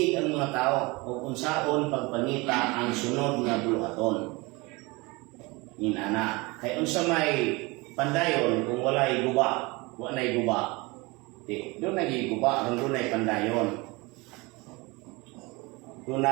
ang mga tao, o unsaon pagpangita ang sunod nga buluhaton. Inana. Kay unsa may pandayon kung walay guba, walay guba. Di, doon nagiguba, doon ay pandayon. Doon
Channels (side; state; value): left; quieter; 25.0 dB